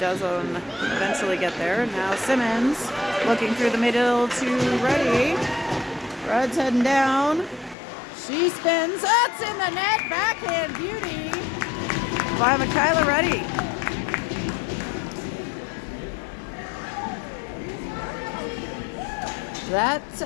eventually get there. Now Simmons looking through the middle to Ruddy. Rudd's heading down. She spins. That's in the net. Backhand beauty by Michaela Ruddy. That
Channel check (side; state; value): right; drops out; at 7.8 s